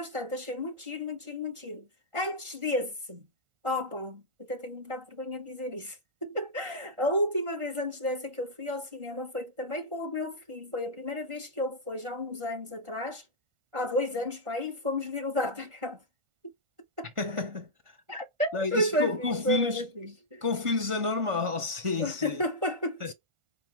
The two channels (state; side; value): late; left; 1.4 ms